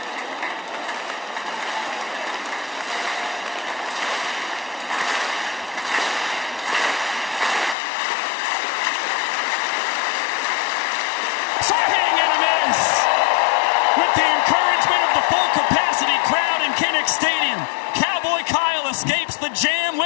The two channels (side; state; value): right; drops out; at 7.8 s